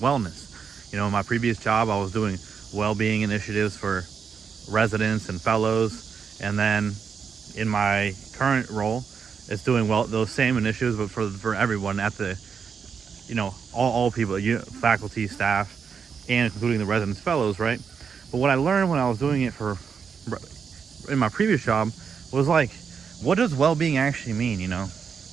You know, in my previous job, I was doing well-being initiatives for residents and fellows, and then in my current role, it's doing those same initiatives, but for everyone at the, you know, all people, faculty, staff, and including the residents, fellows, right? But what I learned when I was doing it in my previous job was like, what does well-being actually mean, you know?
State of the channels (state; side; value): quieter; left; 6.4 dB